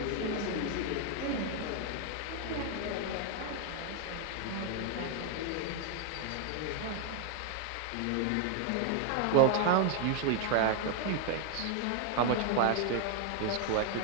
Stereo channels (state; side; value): different; both; correlation 0.00